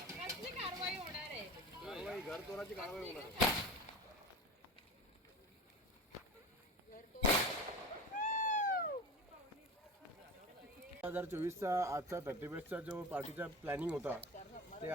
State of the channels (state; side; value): normal; both; correlation 0.33